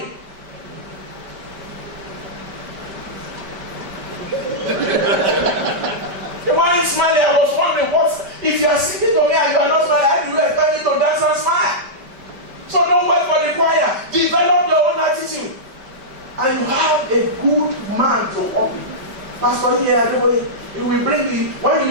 They weren't smiling. I was wondering, if you are singing to me and you are not smiling, how do you expect me to dance and smile? So don't wait for the choir. Develop your own attitude. And you have a good man to open. Pastor here, it will bring you, when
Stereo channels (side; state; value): left; late; 5.2 ms